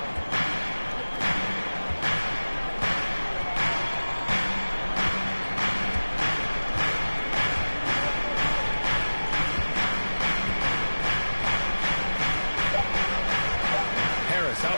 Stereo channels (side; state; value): both; inverted; correlation -1.00